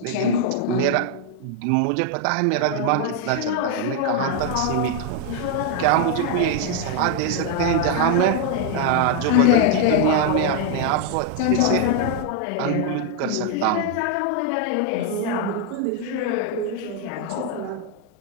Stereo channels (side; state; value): both; different; correlation 0.00